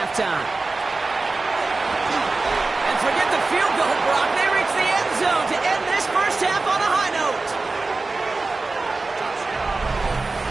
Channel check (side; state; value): left; quieter; 3.6 dB